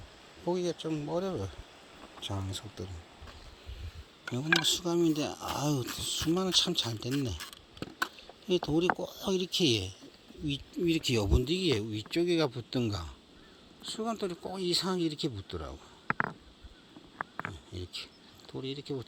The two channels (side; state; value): both; identical; correlation 1.00